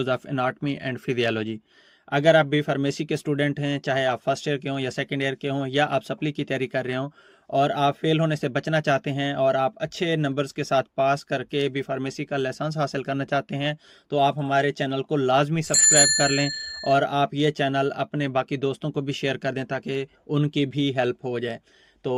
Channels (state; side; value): identical; both; correlation 1.00